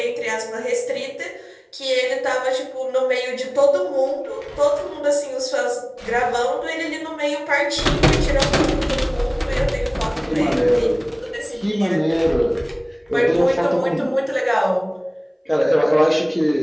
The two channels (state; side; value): identical; both; correlation 1.00